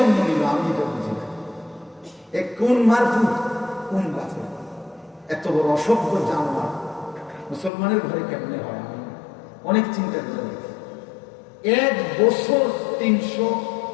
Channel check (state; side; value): drops out; right; at 7.7 s